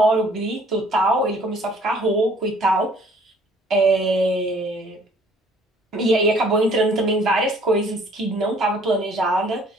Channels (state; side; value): normal; both; correlation 0.57